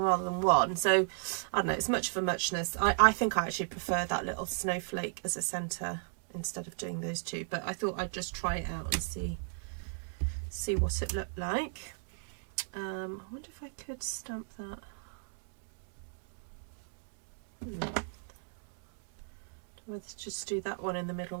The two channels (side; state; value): left; silent; digital silence